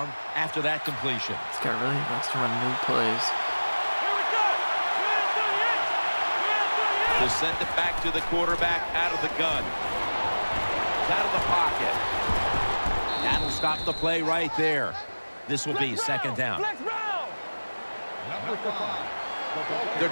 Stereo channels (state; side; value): inverted; both; correlation -1.00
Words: after that completion. This guy really likes to run new plays. To send it back to the quarterback out of the gun. Out of the pocket. That'll stop the play right there. This will be second down.